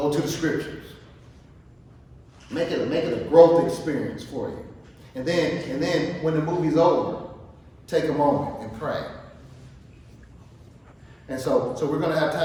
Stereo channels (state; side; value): identical; both; correlation 1.00